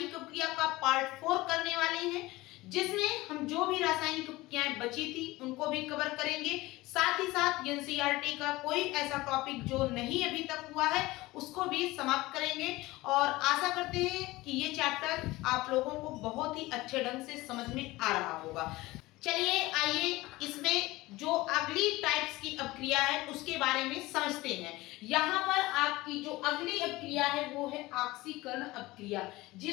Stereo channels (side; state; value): right; quieter; 19.7 dB